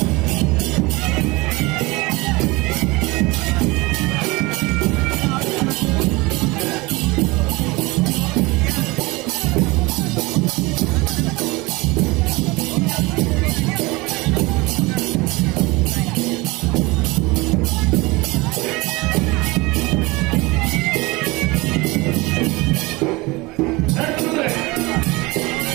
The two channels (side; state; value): left; quieter; 23.3 dB